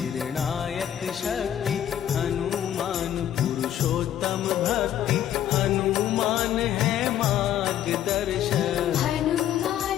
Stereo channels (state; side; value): quieter; right; 10.9 dB